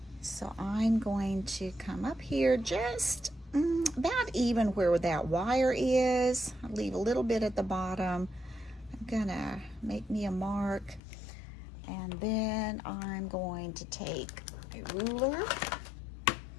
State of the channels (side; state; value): right; drops out; at 11.0 s